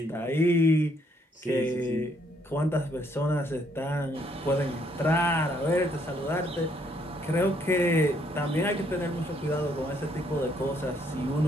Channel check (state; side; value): normal; both; correlation 0.69